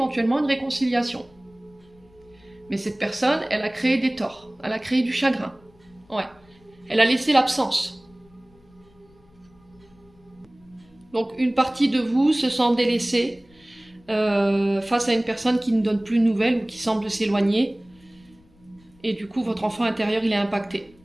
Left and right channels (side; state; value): left; noise; rumble, 29 dB below the sound